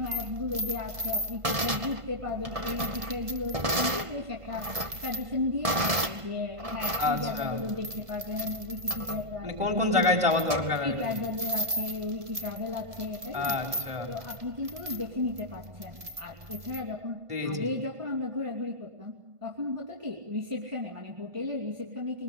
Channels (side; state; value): left; late; 1.5 ms